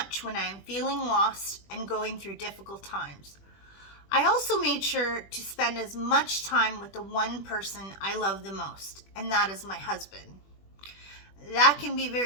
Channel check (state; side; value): late; right; 20 ms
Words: when I am feeling lost and going through difficult times. I also made sure to spend as much time with the one person I love the most, and that is my husband. That can be